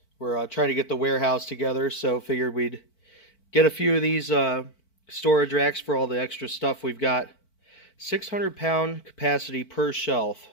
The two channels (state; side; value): late; right; 4.5 ms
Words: We're trying to get the warehouse together, so figured we'd get a few of these storage racks for all the extra stuff we've got. 600-pound capacity per shelf.